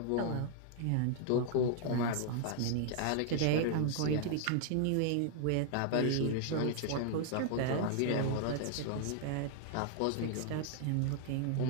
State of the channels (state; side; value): different; both; correlation 0.00